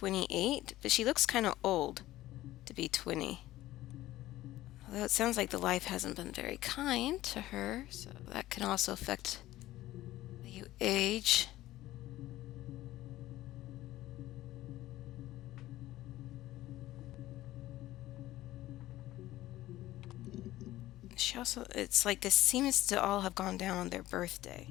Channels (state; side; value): quieter; right; 15.7 dB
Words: but she looks kind of old to be 20. Although it sounds like the life hasn't been very kind to her, so that can also affect how you age. She also, it's like this seems to all have gone down on their birthday.